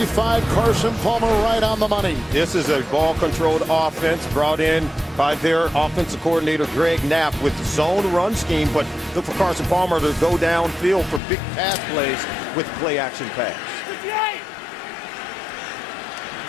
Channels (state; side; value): drops out; right; at 11.2 s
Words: Carson Palmer right on the money. This is a ball-controlled offense brought in by their offensive coordinator, Greg Knapp, with zone run scheme. But look for Carson Palmer to go downfield for big pass plays with play-action pass.